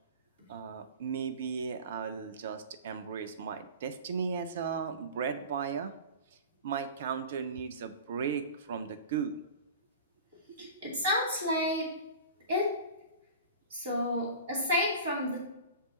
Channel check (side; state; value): both; inverted; correlation -0.36